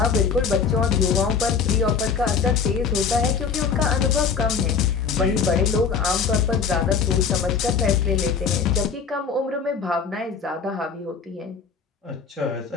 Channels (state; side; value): quieter; right; 5.9 dB